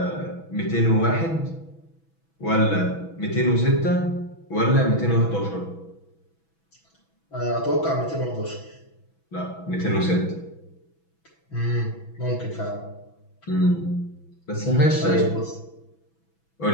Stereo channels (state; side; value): late; right; 6.1 ms